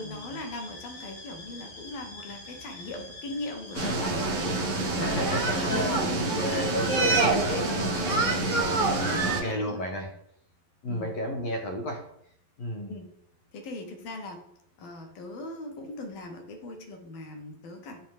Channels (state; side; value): late; right; 11 ms